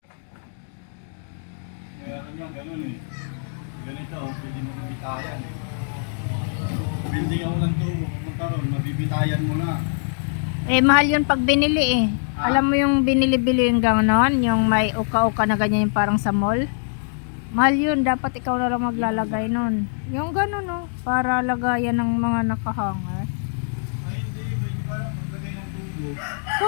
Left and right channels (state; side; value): silent; right; digital silence